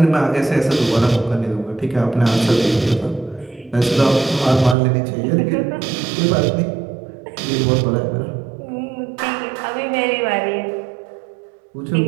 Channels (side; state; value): left; drops out; at 4.8 s